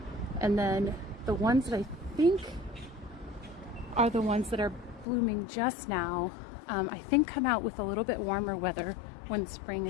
And then the ones that I think are the ones that are blooming just now, I think come out with a little bit warmer weather when spring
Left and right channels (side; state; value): right; drops out; at 5.1 s